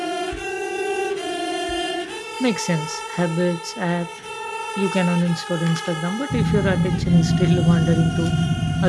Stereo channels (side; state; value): both; identical; correlation 1.00